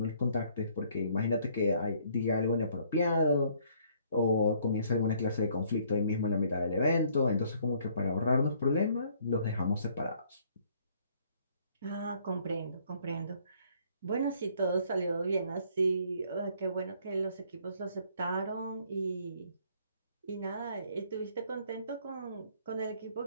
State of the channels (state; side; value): inverted; both; correlation -0.62